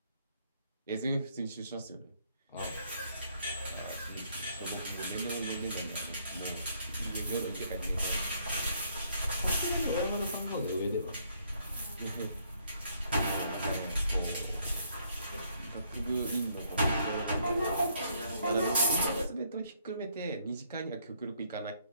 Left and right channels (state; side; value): inverted; both; correlation -0.69